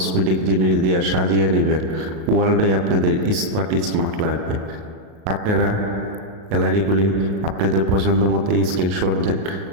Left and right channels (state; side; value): late; left; 37 ms